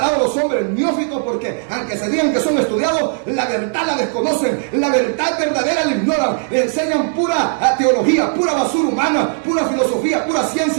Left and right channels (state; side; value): silent; left; digital silence